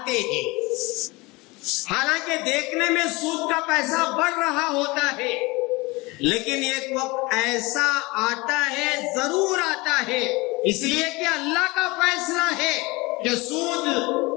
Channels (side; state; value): right; quieter; 23.8 dB